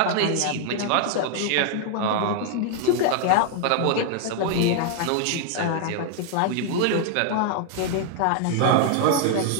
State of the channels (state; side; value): different; both; correlation 0.00